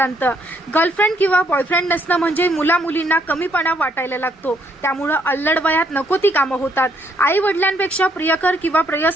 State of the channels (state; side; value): normal; both; correlation 0.70